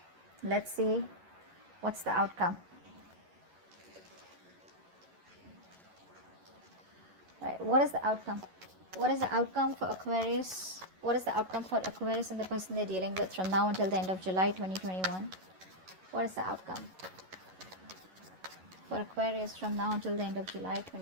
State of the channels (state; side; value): late; left; 11 ms